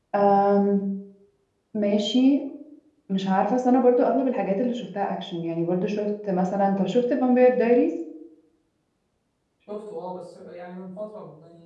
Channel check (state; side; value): identical; both; correlation 1.00